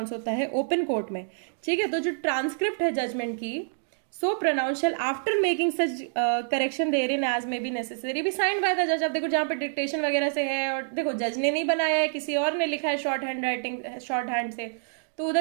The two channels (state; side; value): silent; left; digital silence